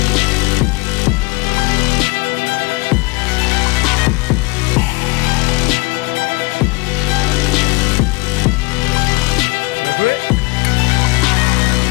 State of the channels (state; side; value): quieter; right; 24.5 dB